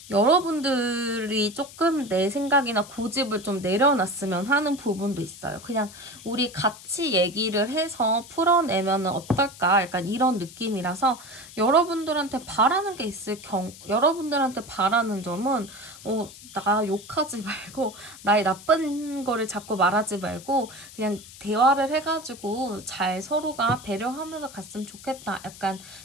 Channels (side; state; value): left; noise; hiss, 18 dB below the sound